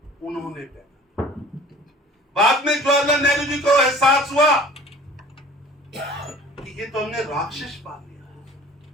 उन्होंने देखा। बाद में जवाहरलाल नेहरू जी को एहसास हुआ कि ये तो हमने राक्षस पाल लिया,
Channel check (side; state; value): both; normal; correlation 0.47